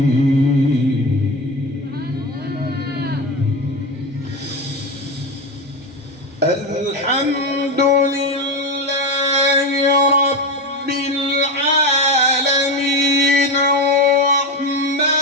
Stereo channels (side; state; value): both; normal; correlation 0.18